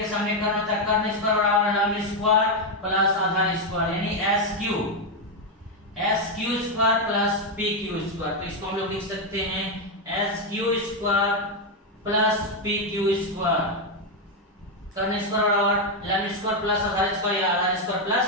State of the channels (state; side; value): normal; both; correlation 0.04